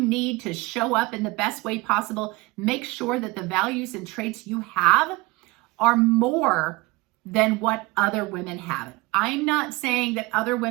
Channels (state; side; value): quieter; left; 23.0 dB